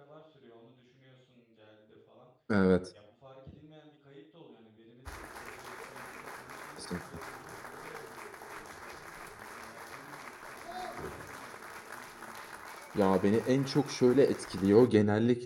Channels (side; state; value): both; identical; correlation 1.00